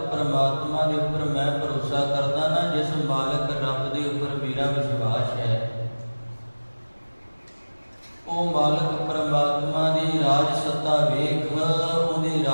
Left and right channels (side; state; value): both; inverted; correlation -1.00